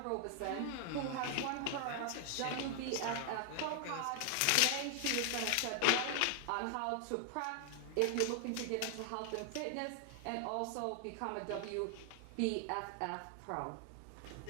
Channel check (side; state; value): both; different; correlation 0.00